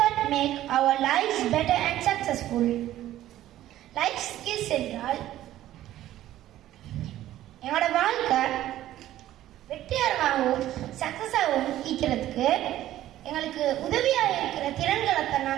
make our lives better and successful. Life skills என்றால் என்னோட வாழ்க்கை வெற்றிகரமாகவும் சக்சஸாகவும் இருக்கிறதுக்கு எங்களுக்கு உதவியாக இருக்கிற திறன்களை தான்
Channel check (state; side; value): quieter; left; 13.6 dB